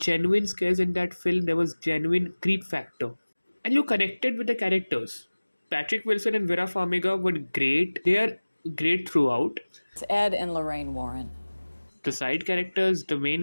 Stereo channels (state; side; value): inverted; both; correlation -1.00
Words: scares in that film, there was genuine creep factor. And you connected with the characters. Patrick Wilson and Vera Farmiga were great. They are great throughout. It's Ed and Lorraine Warren. The side characters, the main